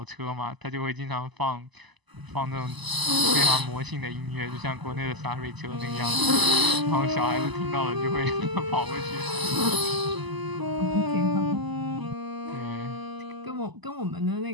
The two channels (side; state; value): left; late; 1.0 ms